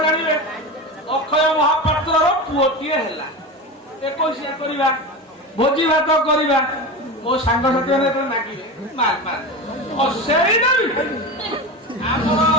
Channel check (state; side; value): normal; both; correlation 0.25